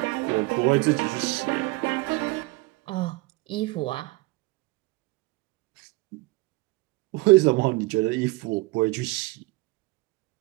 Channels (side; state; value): left; quieter; 22.6 dB